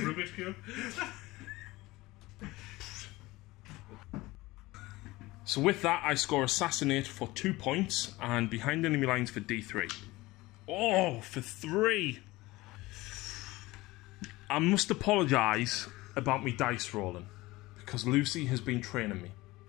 cube. So with that, I score Assassinate for 2 points and Behind Enemy Lines for D3. Oh, for 3! I must apologise about me dice rolling because Lucy has been training me.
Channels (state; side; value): quieter; right; 20.0 dB